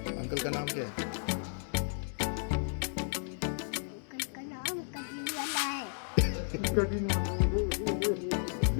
का नाम क्या है? का नाम कटिंग वाला है। कटिंग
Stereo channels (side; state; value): right; silent; digital silence